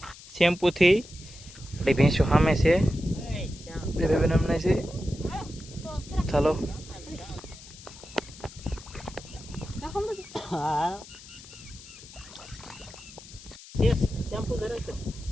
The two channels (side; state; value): left; noise; hiss, 18 dB below the sound